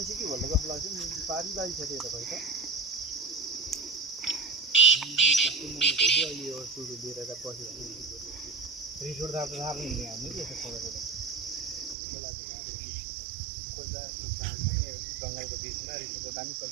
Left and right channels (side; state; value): left; drops out; at 12.0 s